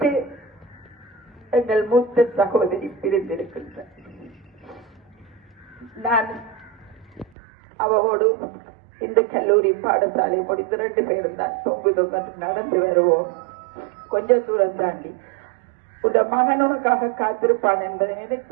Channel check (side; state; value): left; drops out; at 7.3 s